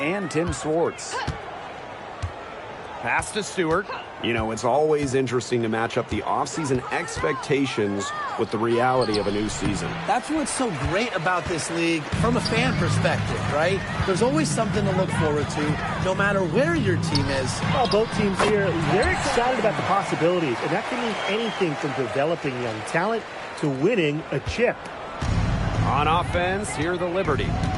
Tim Swartz. Pass to Stewart. You know, it's always interesting to match up the offseason expectations with the reality of a new season. That's what's so great about this league from a fan perspective, right? There's always something to look forward to, no matter where your team is. Well, both teams here, they're excited about the possibilities, and that can mean anything from developing young talent to winning a chip. On offense, here the Liberty.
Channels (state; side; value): identical; both; correlation 1.00